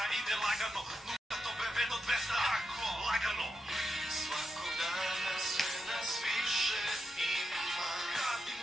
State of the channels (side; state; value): both; normal; correlation 0.87